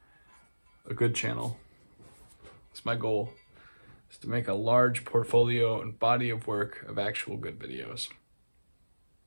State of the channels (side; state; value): both; inverted; correlation -1.00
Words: a good channel. It's my goal, is to make a large portfolio and body of work of actual good videos.